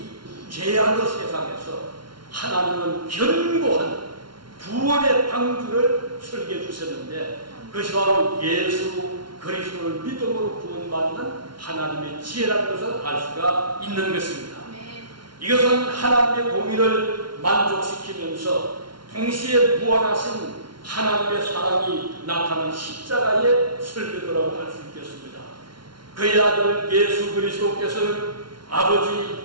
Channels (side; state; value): left; late; 0.73 ms